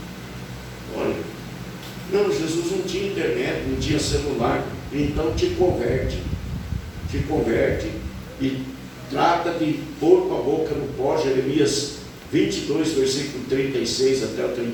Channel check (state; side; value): identical; both; correlation 1.00